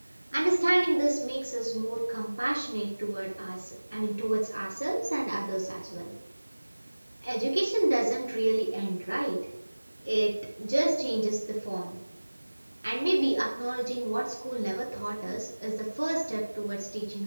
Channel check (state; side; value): inverted; both; correlation -1.00